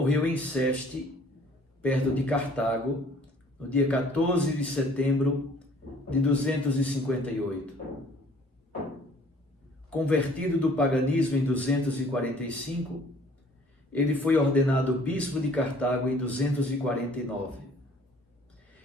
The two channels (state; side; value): normal; both; correlation 0.55